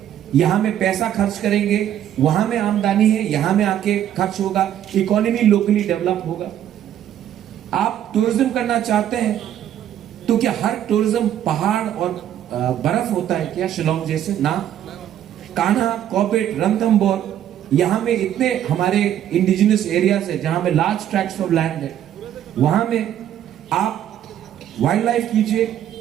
यहां में पैसा खर्च करेंगे, वहां में आमदनी है, यहां में आके खर्च होगा, इकोनॉमी लोकली डेवलप होगा। आप टूरिज्म करना चाहते हैं तो क्या हर टूरिज्म पहाड़ और बर्फ होता है क्या शिलोंग जैसे? ना। कान्हा, कॉर्बेट, रणथंबोर, यहां में इतने हमारे इंडिजिनस एरियाज है जहां में लार्ज ट्रैक्ट्स ऑफ लैंड है, वहां में आप वाइल्ड लाइफ कीजिए,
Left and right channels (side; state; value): left; quieter; 10.9 dB